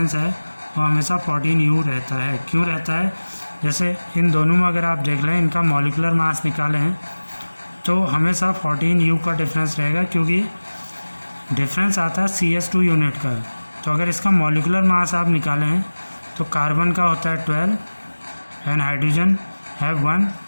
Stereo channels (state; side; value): inverted; both; correlation -1.00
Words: है वो हमेशा 14U रहता है. क्यों रहता है? जैसे इन दोनों में अगर आप देख लें इनका मॉलिकुलर मास निकालें हैं तो हमेशा 14U का डिफरेंस रहेगा क्योंकि डिफरेंस आता है CH2 यूनिट का. तो अगर इसका मॉलिकुलर मास आप निकालें हैं तो कार्बन का होता है 12 एंड हाइड्रोजन हैव 1